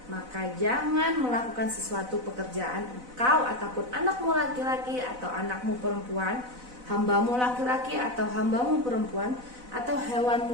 Maka jangan melakukan sesuatu pekerjaan engkau ataupun anakmu laki-laki atau anakmu perempuan, hambamu laki-laki atau hambamu perempuan, atau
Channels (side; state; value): left; late; 4.0 ms